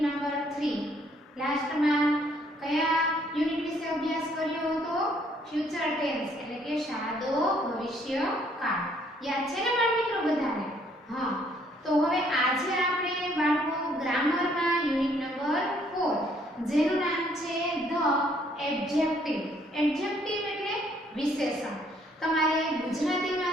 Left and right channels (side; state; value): both; normal; correlation 0.65